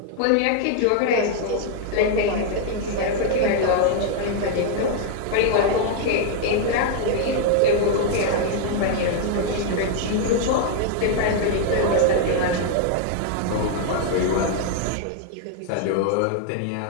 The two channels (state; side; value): different; both; correlation 0.00